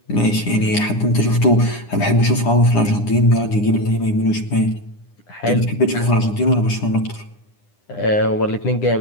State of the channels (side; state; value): right; late; 9.8 ms